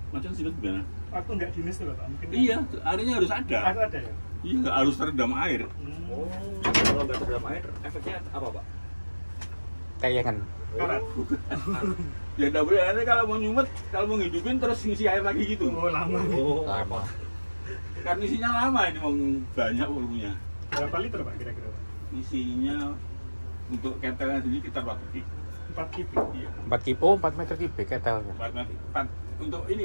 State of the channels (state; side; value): inverted; both; correlation -1.00